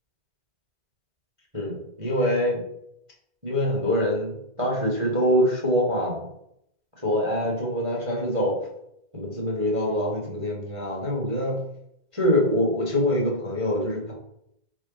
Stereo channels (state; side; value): late; left; 2.0 ms